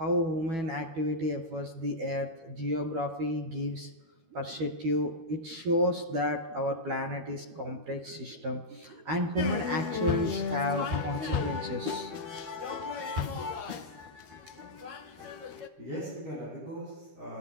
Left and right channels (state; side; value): late; left; 13 ms